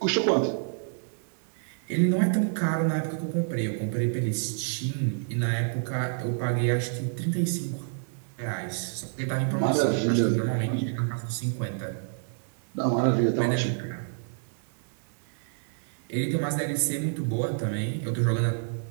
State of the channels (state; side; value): silent; left; 59 dB below the other